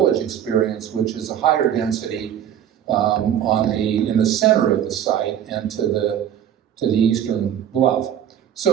experience, which is a higher density in the center of the site and to the eastern bluff.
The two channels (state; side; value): quieter; left; 10.0 dB